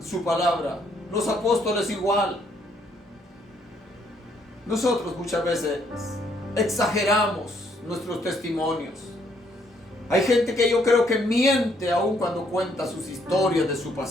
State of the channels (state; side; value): normal; both; correlation 0.69